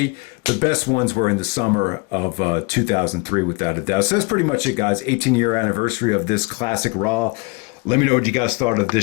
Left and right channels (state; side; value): quieter; right; 28.2 dB